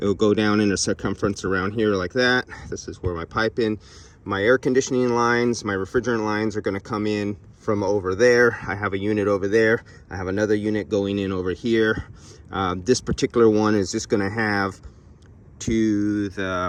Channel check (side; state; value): both; identical; correlation 1.00